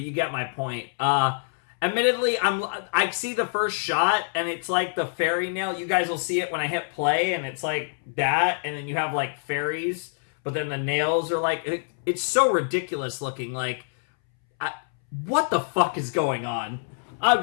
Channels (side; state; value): right; silent; 61 dB below the other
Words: you get my point. Admittedly, I see the first shot, and it's like the fairy nail. You guys will see it when I hit play, and it's like that, and then you have, like, fairies, but then the nails are like... It's so ridiculous looking, like... what the fuck is going on?